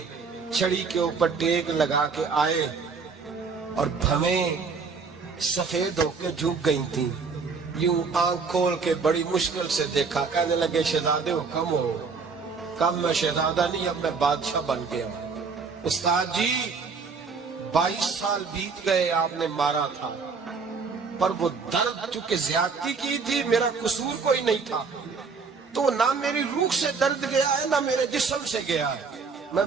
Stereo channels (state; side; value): quieter; left; 5.0 dB